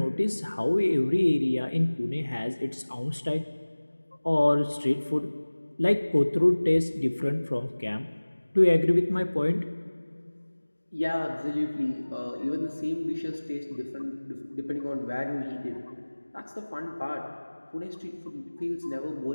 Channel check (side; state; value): both; inverted; correlation -1.00